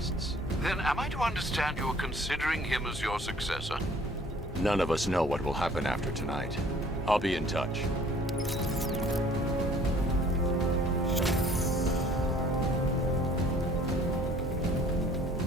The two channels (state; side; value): normal; both; correlation 0.54